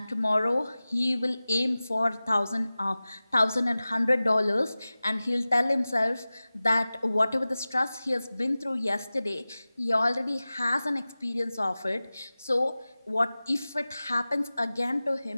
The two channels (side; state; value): both; inverted; correlation -0.97